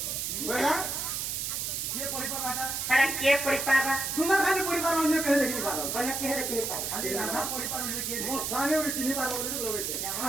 बोला के परिवार बाटा अरे के परिवार तुम्हारा खाली परिवार अन्य कहे देखि पारो कने के देखि पारो खाली राधा परिवार अन्य के मो स्वामी और चिन्ह पारो बोले लोगे छे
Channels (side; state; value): right; noise; hiss, 2 dB below the sound